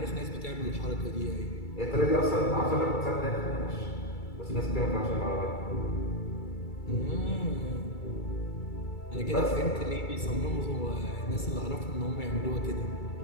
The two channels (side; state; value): right; late; 2.3 ms